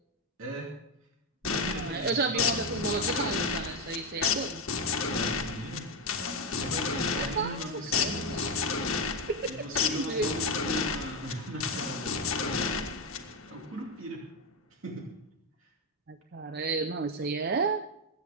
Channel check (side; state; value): both; normal; correlation 0.08